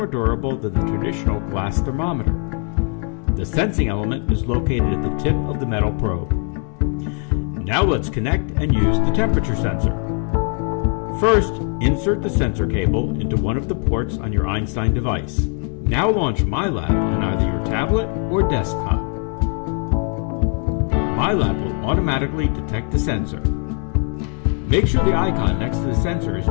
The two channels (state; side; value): quieter; right; 37.6 dB